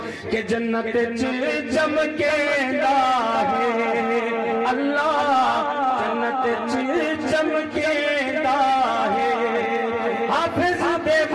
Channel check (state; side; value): identical; both; correlation 1.00